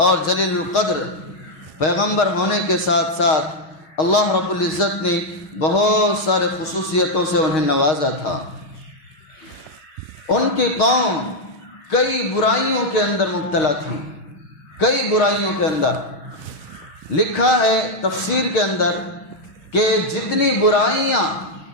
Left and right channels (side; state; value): right; late; 6.4 ms